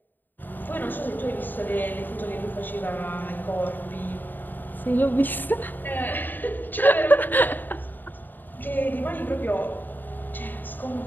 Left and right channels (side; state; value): right; late; 0.090 ms